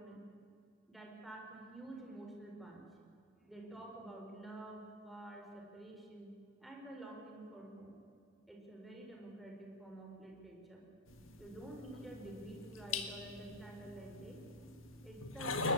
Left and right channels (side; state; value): both; normal; correlation 0.03